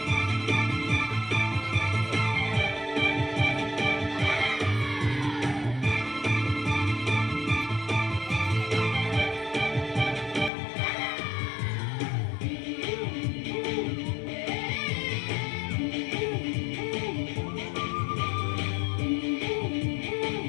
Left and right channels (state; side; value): drops out; right; at 10.5 s